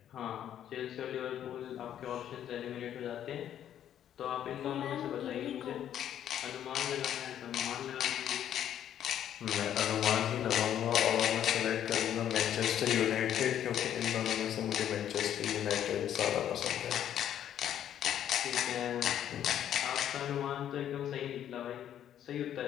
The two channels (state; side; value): quieter; right; 10.5 dB